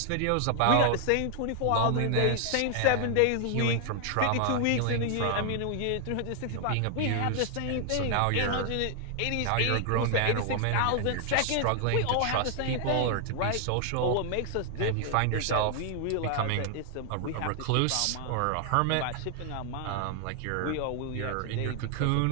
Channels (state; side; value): different; both; correlation 0.00